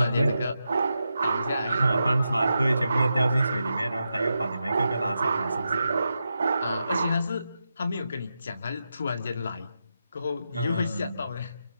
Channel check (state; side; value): inverted; both; correlation -0.87